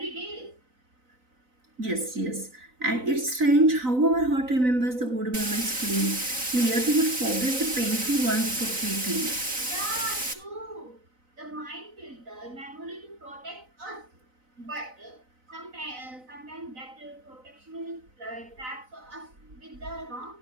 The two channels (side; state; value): left; late; 3.9 ms